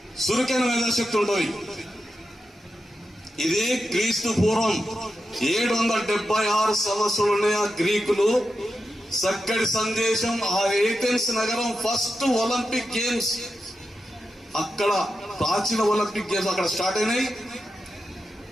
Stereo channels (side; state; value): both; normal; correlation 0.89